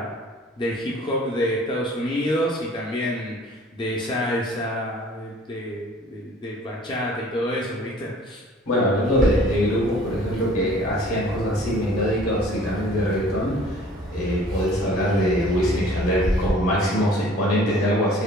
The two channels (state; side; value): normal; both; correlation 0.51